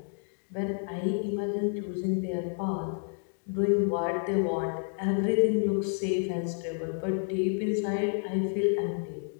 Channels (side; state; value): right; silent; 58 dB below the other